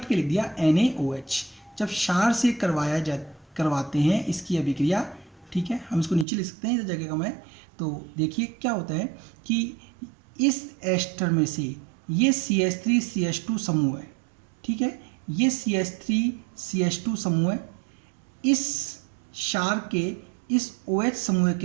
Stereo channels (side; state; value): left; drops out; at 6.2 s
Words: के लिख दिया NaOH, जब क्षार से करवाते हैं इसकी अभिक्रिया, ठीक है, हम इसको नीचे लिख सकते हैं इस जगह का मैं। तो देखिए क्या होता है कि इस एस्टर में से ये CH3 CH2 समूह है, ठीक है, ये CH3 CH2 समूह है, इस क्षार के इस OH समूह